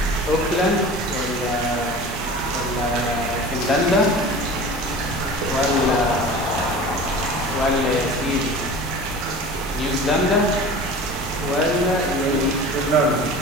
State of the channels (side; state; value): both; normal; correlation 0.38